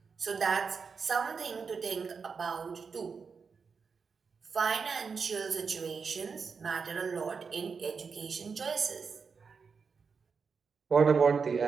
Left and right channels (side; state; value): left; quieter; 5.5 dB